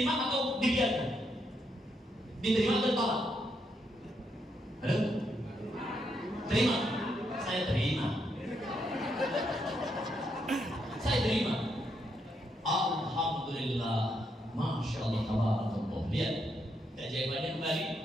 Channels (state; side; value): normal; both; correlation 0.78